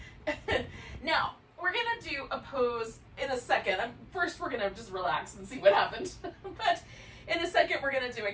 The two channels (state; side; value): identical; both; correlation 1.00